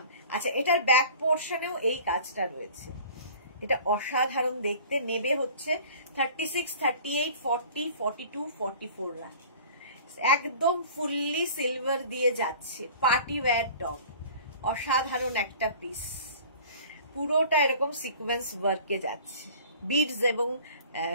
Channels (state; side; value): inverted; both; correlation -0.45